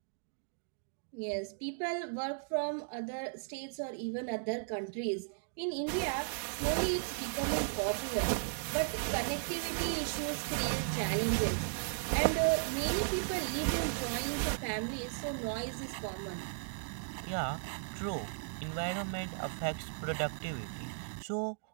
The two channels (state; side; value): silent; left; digital silence